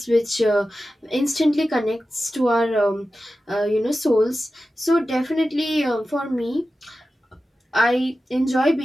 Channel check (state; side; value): normal; both; correlation 0.94